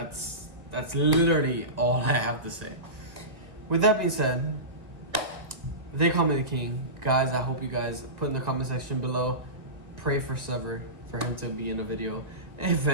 literally all I have to say. With that being said, they call me the king. Guys, I hope you guys put in the comment section below, pray for SEVER, for him to be in a video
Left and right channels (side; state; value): left; late; 1.6 ms